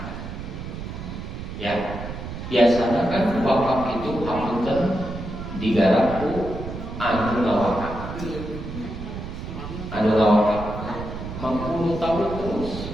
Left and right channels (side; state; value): right; noise; rumble, 8 dB below the sound